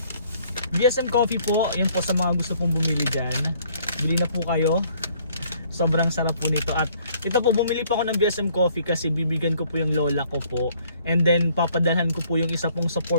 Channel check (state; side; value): inverted; both; correlation -0.62